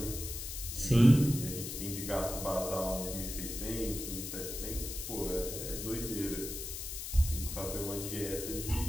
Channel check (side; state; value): left; noise; hiss, 6 dB below the sound